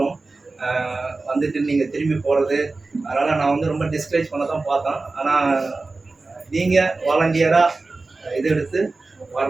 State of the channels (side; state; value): left; quieter; 3.6 dB